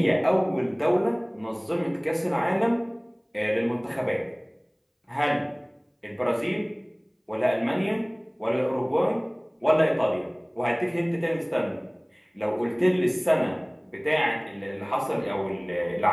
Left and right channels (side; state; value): both; identical; correlation 1.00